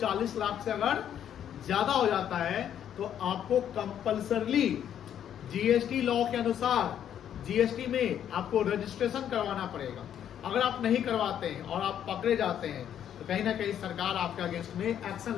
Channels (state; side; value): quieter; right; 9.8 dB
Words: लाख से अगर ज्यादा हो जाता है तो आपको कंपल्सरली जीएसटी लॉ के अनुसार जीएसटी में आपको रजिस्ट्रेशन करवाना पड़ेगा। अगर आप नहीं करवाते हैं और आप पकड़े जाते हैं तो कहीं ना कहीं सरकार आपके अगेंस्ट में एक्शन